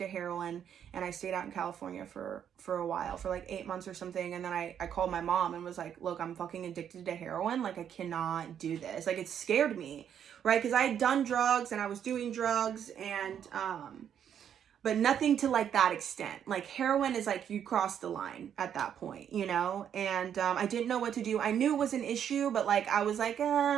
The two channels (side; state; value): left; quieter; 8.9 dB